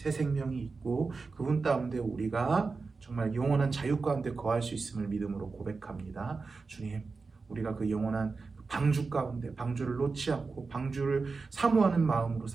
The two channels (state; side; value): quieter; left; 4.3 dB